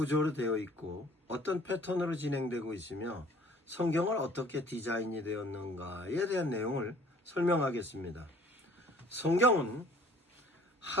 되어 있고 어떤 패턴으로 진행되고 있으며 성경을 어떻게 디자인이 되었는가에 대한 내용을 설명하겠습니다. 성경은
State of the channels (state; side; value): normal; both; correlation 0.54